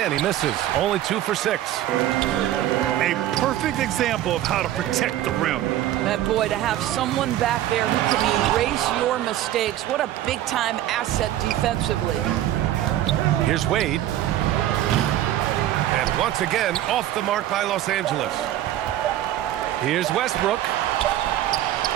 he misses. Only 2 for 6. A perfect example of how to protect the rim. That boy, to have someone back there who can erase your mistakes, what a big-time asset defensively. Here's Wade. And once again, off the mark by Los Angeles. Here's Westbrook.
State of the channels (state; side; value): quieter; left; 13.0 dB